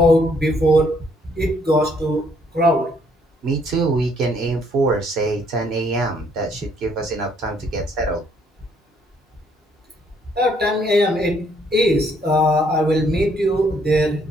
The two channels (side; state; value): both; normal; correlation 0.67